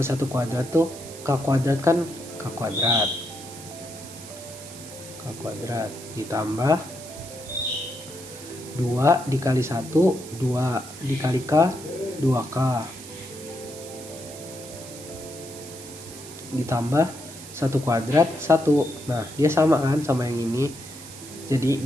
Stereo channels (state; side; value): noise; right; hiss, 15 dB below the sound